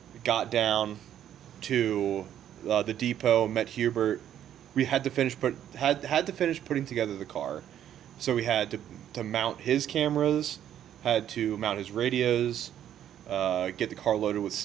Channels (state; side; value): quieter; left; 10.6 dB